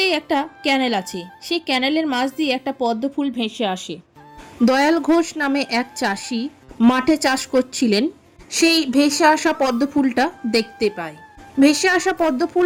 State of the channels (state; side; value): identical; both; correlation 1.00